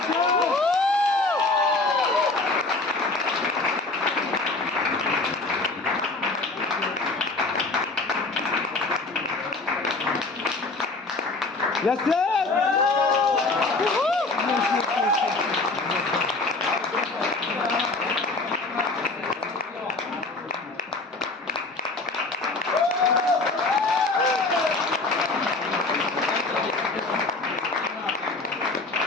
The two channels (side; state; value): right; quieter; 3.4 dB